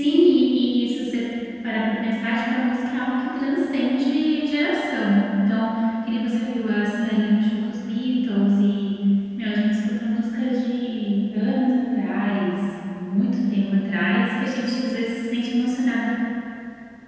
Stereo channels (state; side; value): identical; both; correlation 1.00